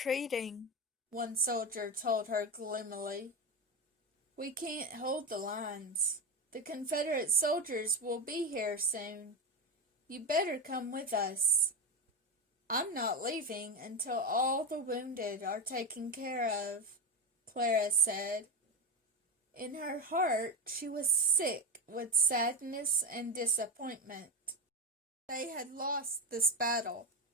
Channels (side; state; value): both; normal; correlation 0.16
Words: one soldier told her gloomily. "We can't hold the lines. The Confederate soldiers will be here soon. You better come with us." "I'm not leaving until all the wounded are taken care of," Clara said. In her heart she was sick with sadness and disappointment. They had lost this battle.